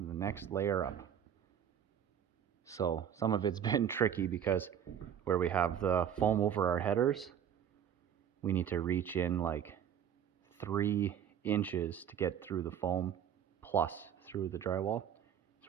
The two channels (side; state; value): left; quieter; 9.1 dB